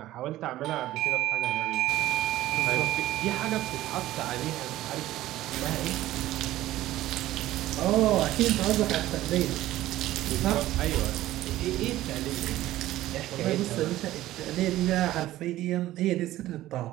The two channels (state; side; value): quieter; left; 15.2 dB